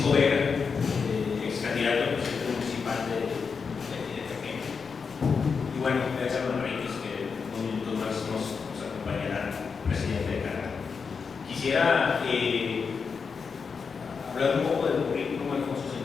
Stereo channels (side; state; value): right; quieter; 5.5 dB